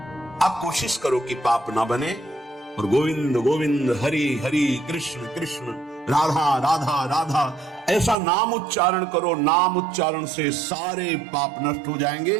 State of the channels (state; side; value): drops out; left; at 8.2 s